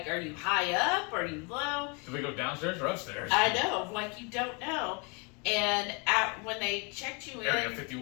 are you high up, are you low? Do we go downstairs or upstairs? I know, like you don't know. And when they checked you Area in,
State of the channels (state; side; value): quieter; right; 31.7 dB